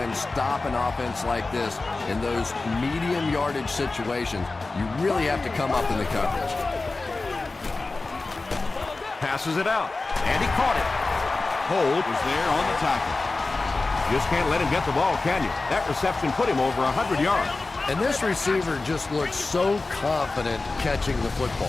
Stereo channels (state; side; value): quieter; right; 3.5 dB